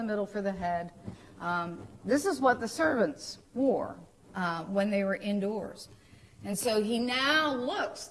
middle for the head. This is what the servants wore when they were indoors. And so he now looks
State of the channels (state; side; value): identical; both; correlation 1.00